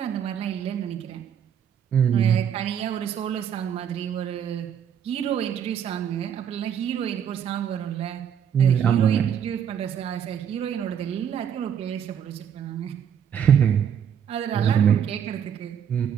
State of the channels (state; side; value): quieter; left; 8.6 dB